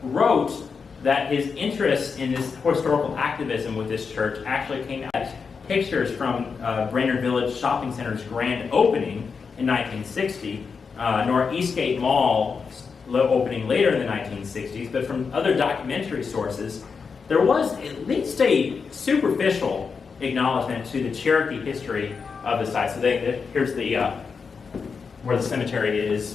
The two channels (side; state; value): right; quieter; 5.4 dB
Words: wrote that his interest in this historical activism with this church actually came out of pictures from Brainerd Village Shopping Center's grand opening in 1960, nor Eastgate Mall opening later in the 1960s, but from other documentary sources, there was at least a superficial acknowledgement to the Cherokee history of the site. So here's where the cemetery